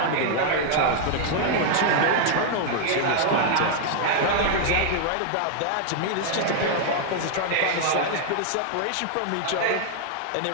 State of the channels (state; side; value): different; both; correlation 0.00